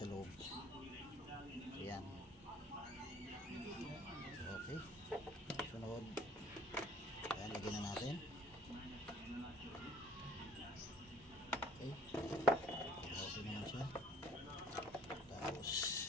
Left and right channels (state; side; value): normal; both; correlation 0.54